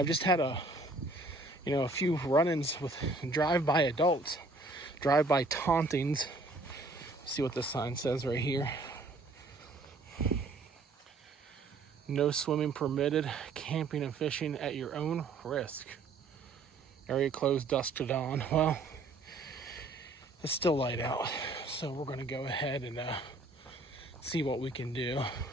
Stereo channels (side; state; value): left; quieter; 3.2 dB